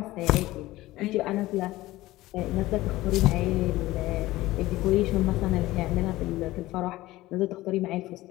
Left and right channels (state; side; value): quieter; right; 17.6 dB